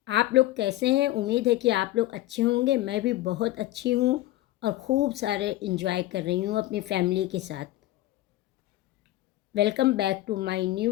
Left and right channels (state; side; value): quieter; right; 16.1 dB